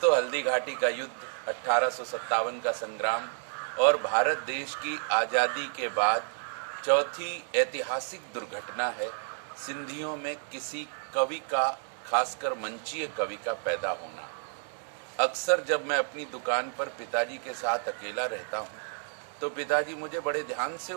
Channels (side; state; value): left; silent; 57 dB below the other